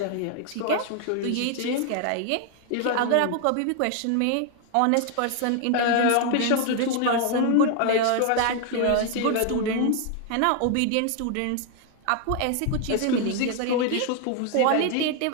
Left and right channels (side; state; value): both; different; correlation 0.00